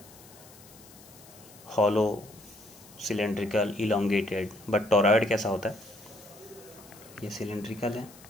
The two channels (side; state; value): left; noise; hiss, 22 dB below the sound